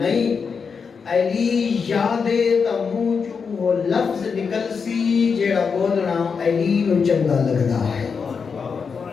علی یادے تا منہ چوں وہ لفظ نکل سی جیڑا بولنا علی نو چنگا لگدا ہے.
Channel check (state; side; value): quieter; right; 5.7 dB